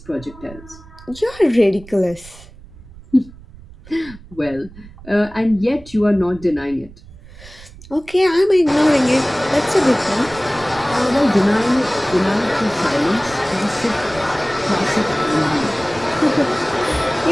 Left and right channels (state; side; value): noise; right; rumble, 20 dB below the sound